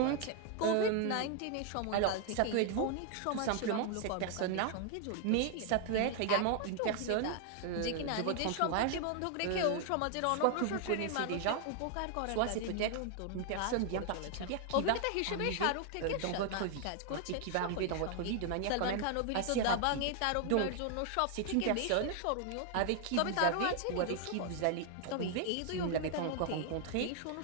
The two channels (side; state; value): both; different; correlation 0.00